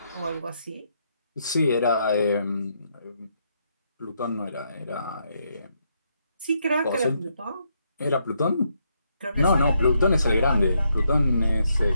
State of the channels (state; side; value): inverted; both; correlation -0.77